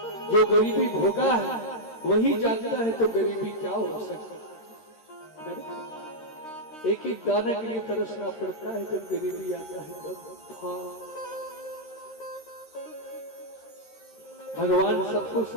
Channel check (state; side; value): late; right; 13 ms